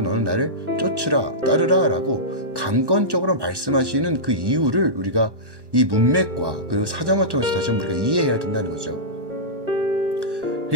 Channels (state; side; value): late; left; 1.1 ms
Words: 너는 나를 쫓으라, 따르라 라고 강권적으로 말씀하시는 그 이유를 우리가 이 문맥과 그 사정을 통해서 다시 한번 우리가 이해해야 된다는 거죠.